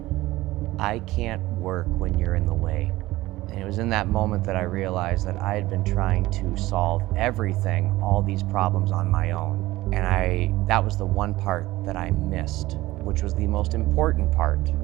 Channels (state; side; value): quieter; left; 17.8 dB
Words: I can't work when you're in the way. And it was in that moment that I realized that I had been trying to solve everything, all these problems on my own. And that was the one part that I missed, which was the most important part.